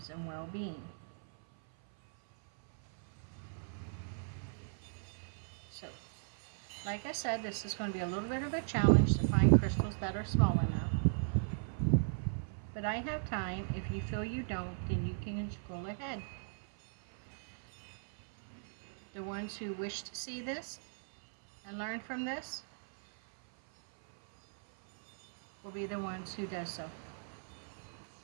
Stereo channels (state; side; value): silent; left; 53 dB below the other